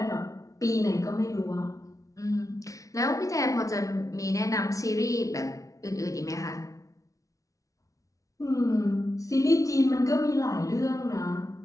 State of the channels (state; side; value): late; right; 0.16 ms